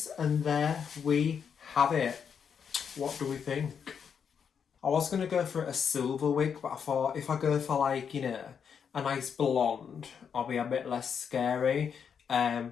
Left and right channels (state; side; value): quieter; right; 7.1 dB